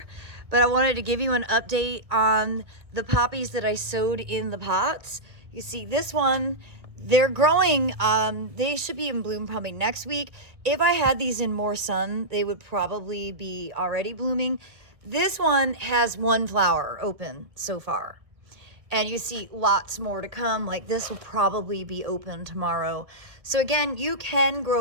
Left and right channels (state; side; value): late; left; 1.6 ms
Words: but I wanted to give you an update on the poppies that I sowed in the pots. You see this one, they're growing. They should be in bloom probably next week. If I had these in more sun, they would probably be already blooming. This one has one flower open so far. And you see lots more to come. Like this will probably be open tomorrow. So again, you can